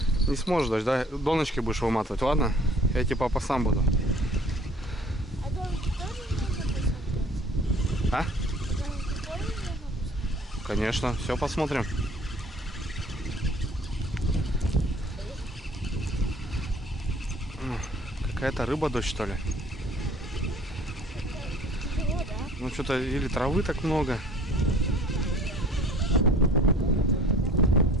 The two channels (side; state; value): both; normal; correlation 0.51